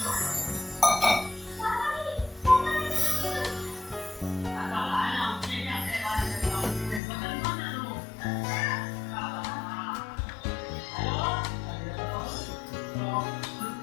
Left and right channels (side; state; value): right; drops out; at 7.0 s